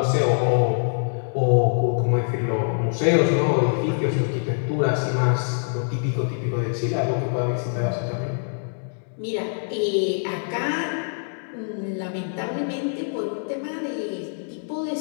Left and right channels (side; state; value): right; silent; 62 dB below the other